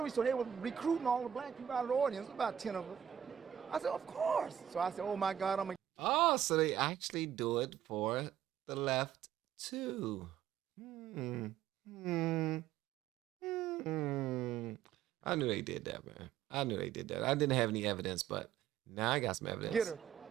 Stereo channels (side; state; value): left; quieter; 9.7 dB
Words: So they were recruiting all the black people out of the audience, about 10 of us. I said, of course. So I said, oh my God, Oh, so they actually do it for the left too. I knew they did that, man. I knew they did that. I didn't have any evidence, but now I got some evidence. Get her.